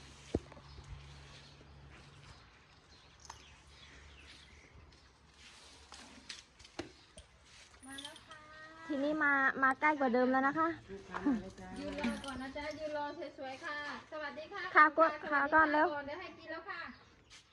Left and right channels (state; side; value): identical; both; correlation 1.00